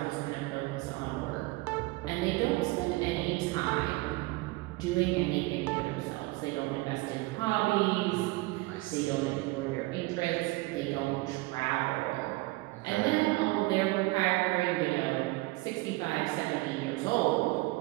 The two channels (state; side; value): quieter; left; 22.2 dB